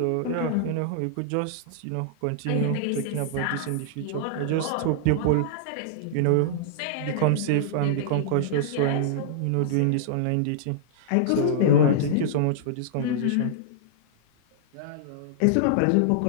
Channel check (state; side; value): different; both; correlation -0.02